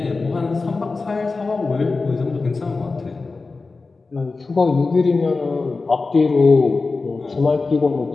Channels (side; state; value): right; quieter; 3.9 dB